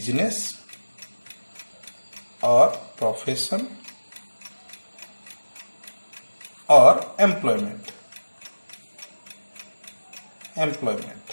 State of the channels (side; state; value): both; inverted; correlation -1.00